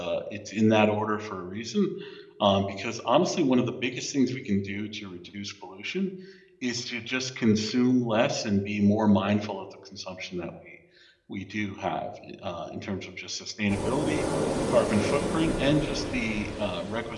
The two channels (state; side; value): identical; both; correlation 1.00